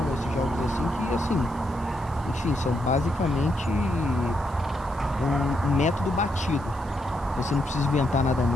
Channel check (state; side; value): noise; right; hiss, 24 dB below the sound